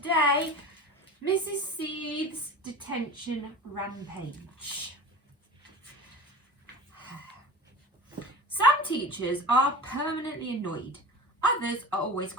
Mrs. Seeth's Detention Rampage. Some teachers are permanently annoyed, others are always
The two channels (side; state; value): both; normal; correlation 0.33